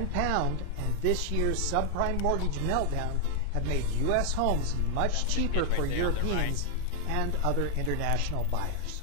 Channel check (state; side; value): different; both; correlation 0.00